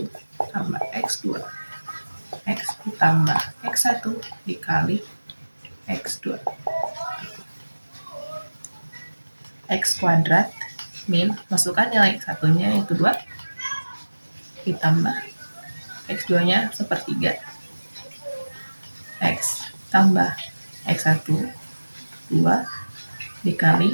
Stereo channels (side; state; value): both; inverted; correlation -1.00